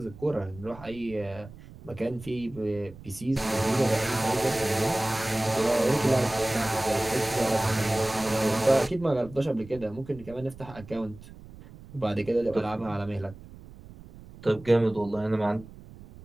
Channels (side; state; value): right; noise; rumble, 18 dB below the sound